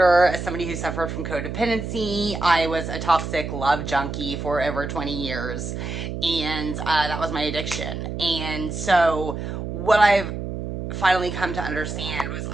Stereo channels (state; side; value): noise; right; hum, 5 dB below the sound